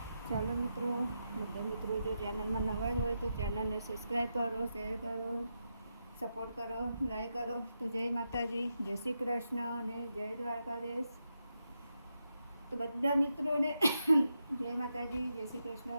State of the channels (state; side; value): inverted; both; correlation -0.86